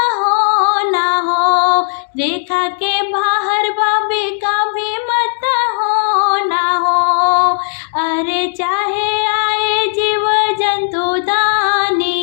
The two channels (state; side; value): silent; right; digital silence